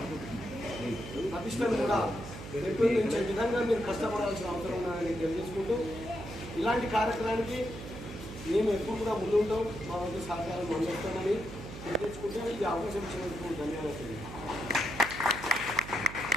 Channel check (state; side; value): noise; right; hum, 11 dB below the sound